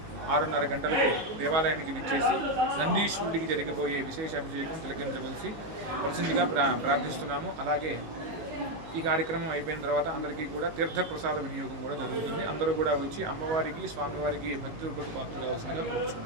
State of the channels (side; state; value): left; late; 19 ms